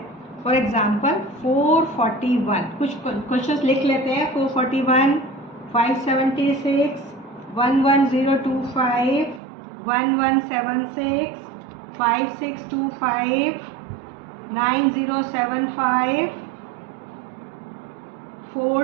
फॉर एग्जांपल 441, कुछ क्वेश्चंस लिख लेते हैं। 441, 576, 11025, 1176, 5625, 9075,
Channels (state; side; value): drops out; left; at 9.4 s